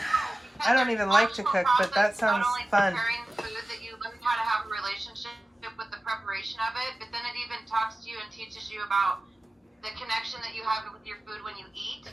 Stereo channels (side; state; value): both; normal; correlation 0.96